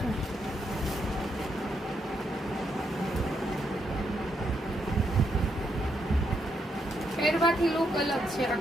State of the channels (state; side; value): normal; both; correlation 0.79